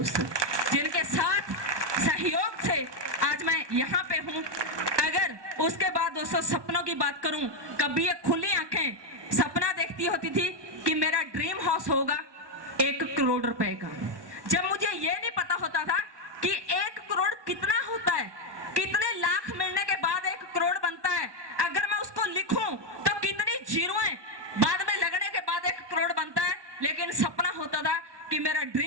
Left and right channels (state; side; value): late; left; 1.2 ms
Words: जिनके साथ सहयोग से आज मैं यहाँ पे हूँ। अगर उसके बाद दोस्तों सपनों की बात करूँ, कभी एक खुली आंखें सपना देखती होती थी कि मेरा ड्रीम हाउस होगा 1 करोड़ रुपए का। जब मुझे ये नहीं पता होता था कि 1 करोड़ कितना होता है, कितने लाख मिलने के बाद 1 करोड़ बनता है, अगर मैं उसको लिखूं तो कितनी जीरोएं बाद में लगने के बाद 1 करोड़ बनता है। लेकिन सपना होता था कि मेरा